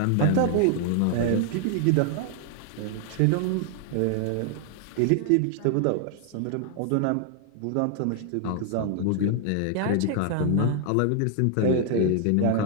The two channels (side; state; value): both; different; correlation 0.00